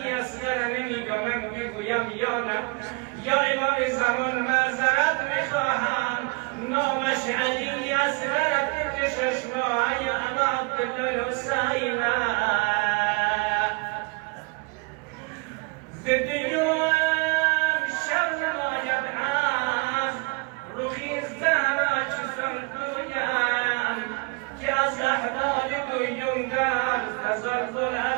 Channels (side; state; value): left; quieter; 29.4 dB